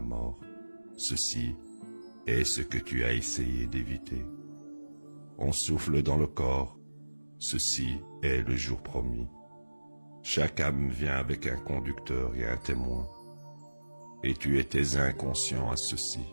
Ceci est ce que tu as essayé d'éviter. On souffle dans le corps. Ceci est le jour promis. Chaque âme vient avec un conducteur et un témoin. Et tu étais inconscient à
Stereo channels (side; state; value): both; inverted; correlation -1.00